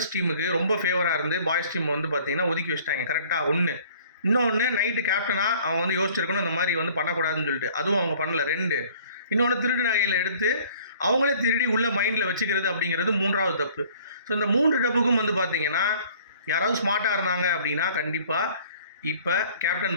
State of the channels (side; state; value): both; inverted; correlation -0.53